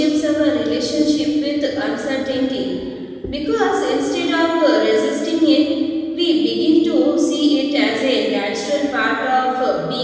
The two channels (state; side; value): identical; both; correlation 1.00